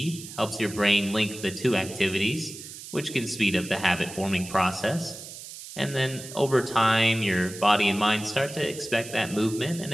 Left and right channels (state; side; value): noise; right; hiss, 13 dB below the sound